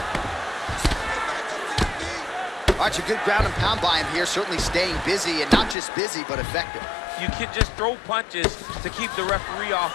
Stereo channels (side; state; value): right; drops out; at 5.8 s